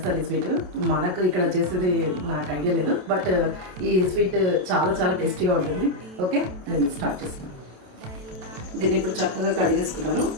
ఈ స్వీట్. మనకు ఇక్కడ చేసేది నాకు ఐడియా లేదు, బట్ ఈ స్వీట్ చాలా చాలా టేస్టీగా ఉంటుంది. ఓకే, నేను స్టార్ట్ చేస్తున్నాను. దీన్ని ఇప్పుడు చక్కగా కడిగేసుకున్నాను.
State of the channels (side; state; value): left; late; 27 ms